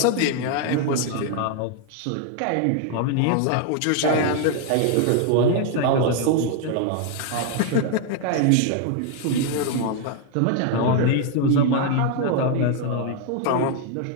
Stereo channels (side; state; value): both; different; correlation 0.00